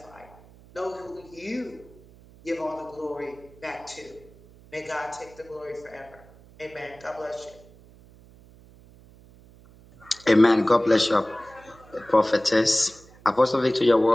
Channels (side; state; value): right; noise; hum, 24 dB below the sound